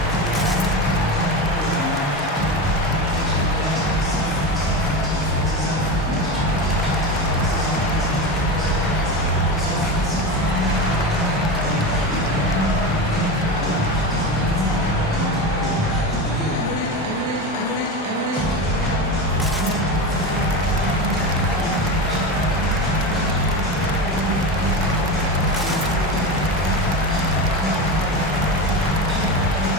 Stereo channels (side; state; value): both; normal; correlation 0.22